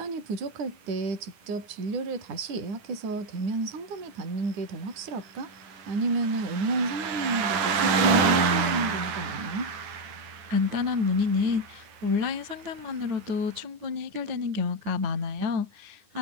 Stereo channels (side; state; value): left; late; 9.7 ms